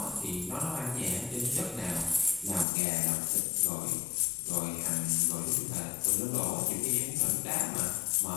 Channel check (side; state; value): right; drops out; at 2.7 s